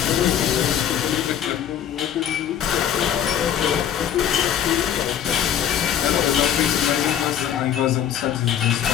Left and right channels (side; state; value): right; quieter; 9.6 dB